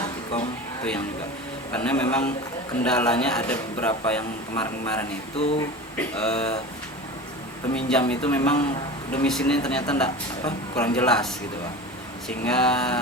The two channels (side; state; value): both; normal; correlation 0.32